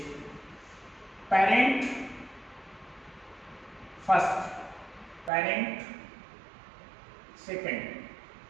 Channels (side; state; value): left; drops out; at 5.3 s